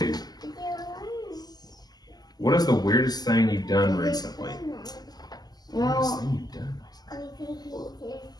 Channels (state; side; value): late; right; 0.20 ms